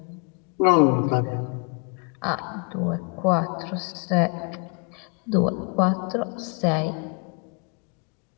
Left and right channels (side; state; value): right; quieter; 36.4 dB